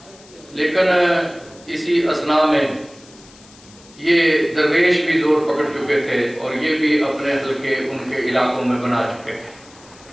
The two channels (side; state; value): left; noise; hiss, 24 dB below the sound